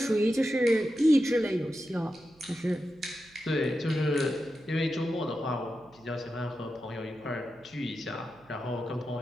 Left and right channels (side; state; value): right; noise; hum, 29 dB below the sound